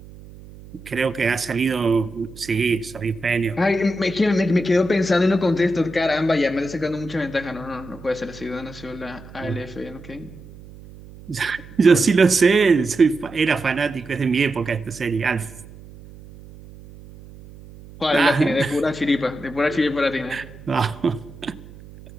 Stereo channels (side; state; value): right; noise; hum, 19 dB below the sound